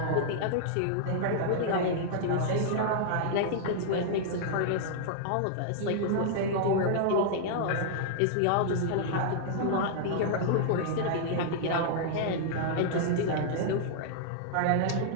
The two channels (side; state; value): both; different; correlation -0.01